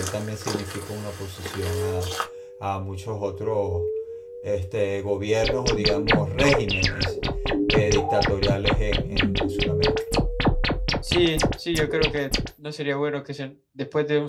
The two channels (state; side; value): identical; both; correlation 1.00